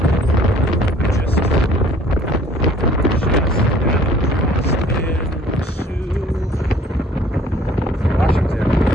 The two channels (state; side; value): normal; both; correlation 0.55